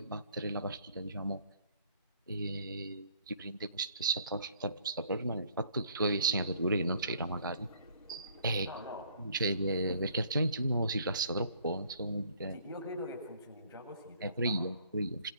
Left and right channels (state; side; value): inverted; both; correlation -0.61